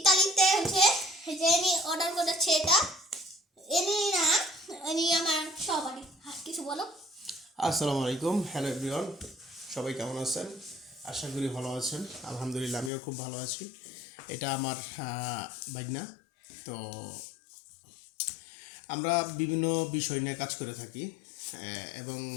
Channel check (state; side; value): drops out; right; at 12.9 s